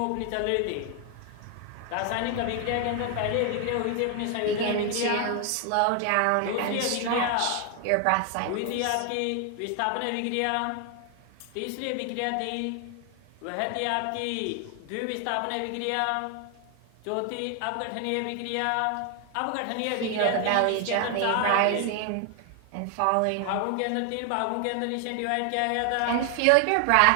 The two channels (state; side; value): different; both; correlation 0.00